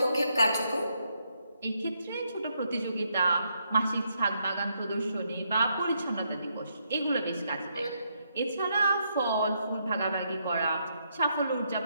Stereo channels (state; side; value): inverted; both; correlation -0.77